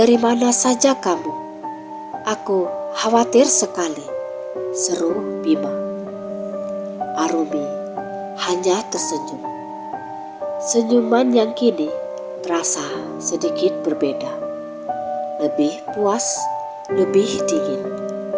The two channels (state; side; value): identical; both; correlation 1.00